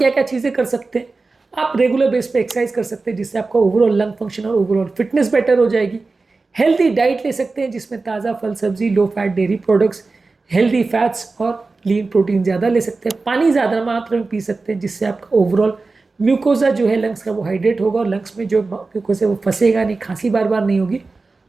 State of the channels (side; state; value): left; quieter; 3.8 dB